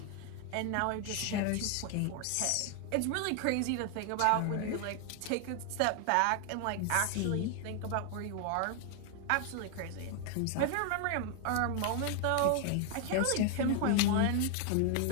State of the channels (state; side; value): different; both; correlation 0.00